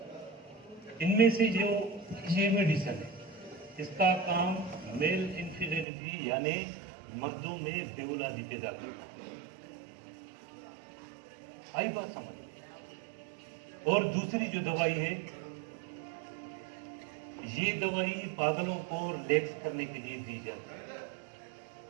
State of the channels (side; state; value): left; drops out; at 5.9 s